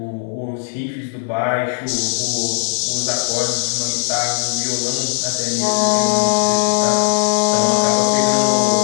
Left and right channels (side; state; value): right; silent; 60 dB below the other